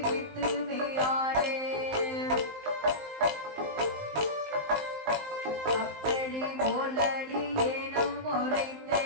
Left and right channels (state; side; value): late; left; 19 ms